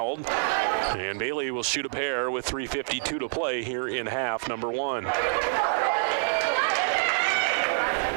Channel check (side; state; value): left; silent; 56 dB below the other